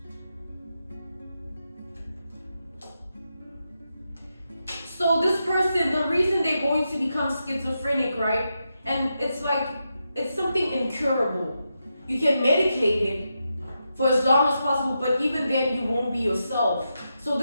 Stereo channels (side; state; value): both; inverted; correlation -0.86